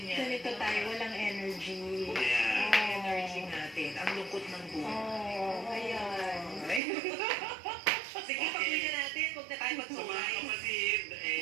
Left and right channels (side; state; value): left; drops out; at 6.8 s